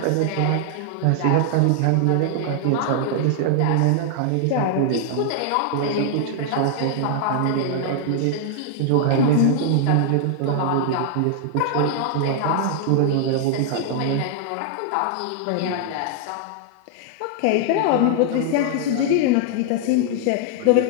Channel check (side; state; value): both; different; correlation 0.00